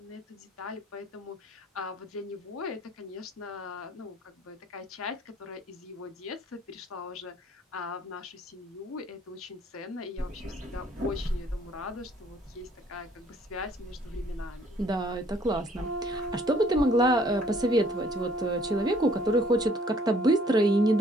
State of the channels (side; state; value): both; normal; correlation 0.60